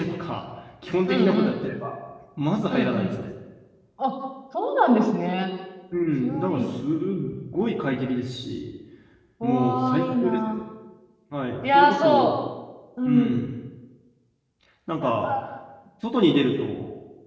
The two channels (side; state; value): both; identical; correlation 1.00